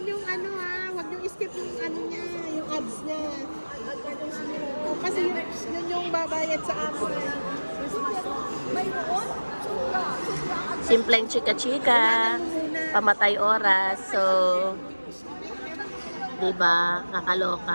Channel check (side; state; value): both; inverted; correlation -1.00